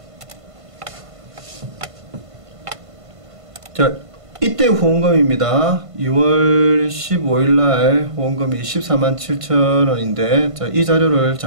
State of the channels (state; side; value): late; left; 1.5 ms